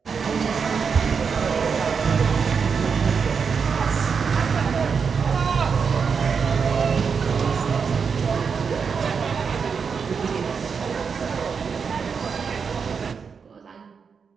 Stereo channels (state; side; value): quieter; left; 6.0 dB